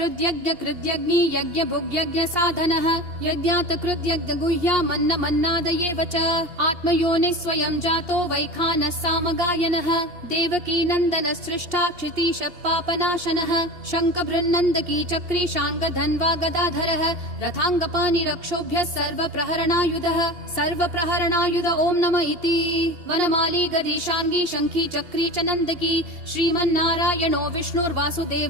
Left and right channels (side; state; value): left; late; 2.8 ms